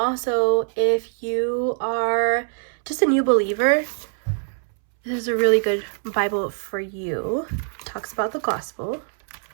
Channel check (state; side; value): silent; left; 63 dB below the other